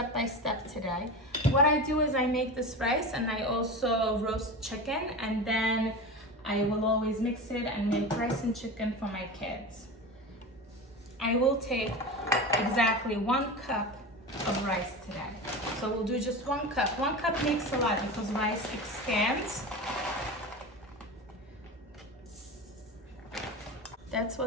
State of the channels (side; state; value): both; normal; correlation 0.27